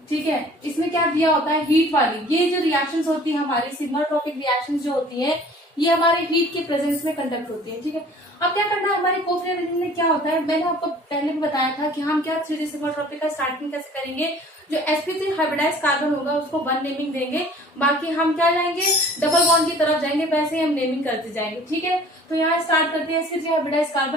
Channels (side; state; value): both; normal; correlation 0.49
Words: ठीक है, इसमें क्या दिया होता है, हीट वाली। ये जो रिएक्शंस होती है हमारी सिग्माट्रोपिक रिएक्शंस जो होती है, ये हमारे हीट के प्रेजेंस में कंडक्ट होती है। ठीक है, अब क्या करना है, हमारे कोप रीअरेंजमेंट में क्या होता है, मैंने आपको पहले भी बताया था कि हम क्या 3D सिग्माट्रोपिक का स्टार्टिंग कैसे करेंगे। जो sp3 हाइब्रिडाइज कार्बन होगा उसको 1 नेमिंग देंगे, बाकी हम क्या जाएंगे, डबल बॉन्ड की तरफ जाएंगे, वैसे ही हम नेमिंग करते जाएंगे। ठीक है, तो यहाँ स्टार्ट करते हैं। sp3 हाइब्रिडाइज